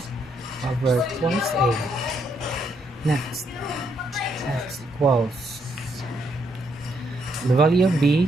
over twice a. Next, x equals, the value of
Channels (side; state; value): both; normal; correlation 0.75